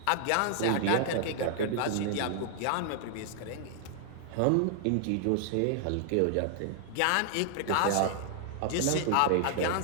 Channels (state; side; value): different; both; correlation -0.01